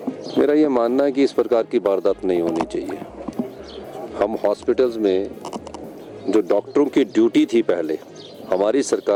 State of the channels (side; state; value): both; identical; correlation 1.00